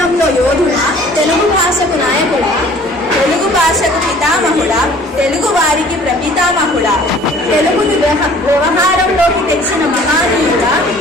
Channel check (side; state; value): both; normal; correlation 0.52